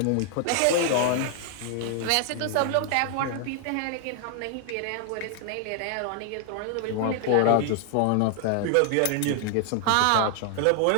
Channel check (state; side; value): different; both; correlation 0.00